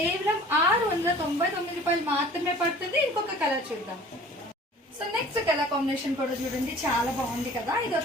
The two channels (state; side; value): normal; both; correlation 0.48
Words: 699 రూపాయలు మాత్రమే పడుతుంది. ఇంకొక కలర్ చూద్దాం. సో నెక్స్ట్ కలర్ కాంబినేషన్ కూడా చూడండి, చాలా బాగుంది కదా. ఇది